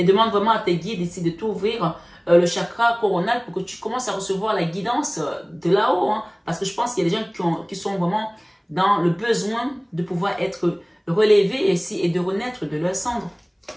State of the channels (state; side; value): identical; both; correlation 1.00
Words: demande vraiment à tes guides ici de t'ouvrir le chakra coronal pour que tu commences à recevoir la guidance de là-haut. Hein. Parce que je pense qu'il y a des gens qui sont vraiment dans le besoin de pouvoir être relevés ici et de renaître de leur cendre.